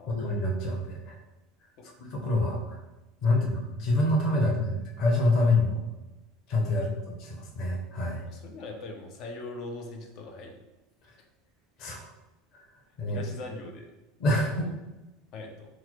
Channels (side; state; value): both; normal; correlation 0.60